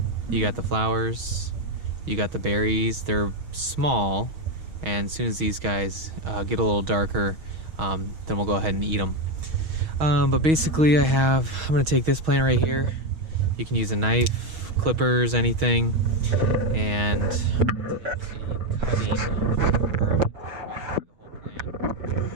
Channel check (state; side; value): late; left; 6.3 ms